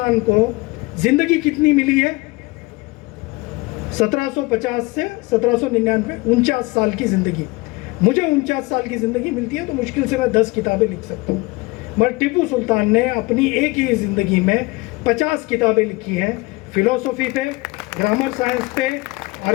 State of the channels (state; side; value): quieter; right; 24.0 dB